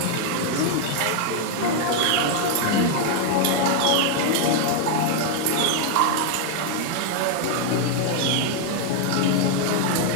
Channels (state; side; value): different; both; correlation 0.00